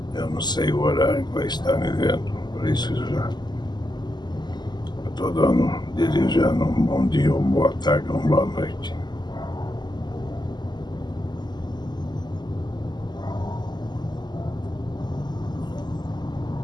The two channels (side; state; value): right; late; 0.21 ms